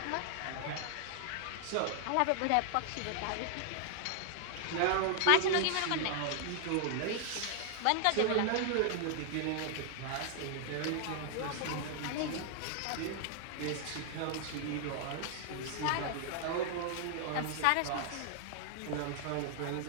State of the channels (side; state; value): both; different; correlation 0.00